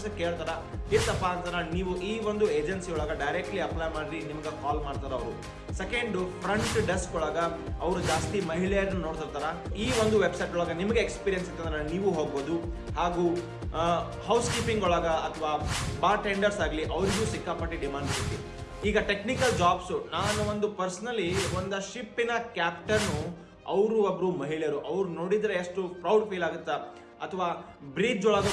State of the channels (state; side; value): identical; both; correlation 1.00